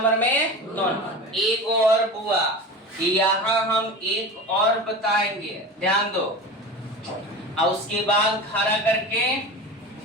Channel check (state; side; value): normal; both; correlation 0.31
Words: में? 2 नंबर। एक और बुआ यहाँ हम एक और बताएंगे, ध्यान दो, और उसके बाद खड़ा करके